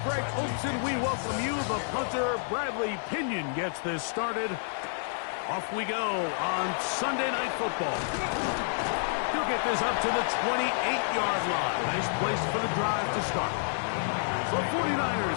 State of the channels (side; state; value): right; silent; 58 dB below the other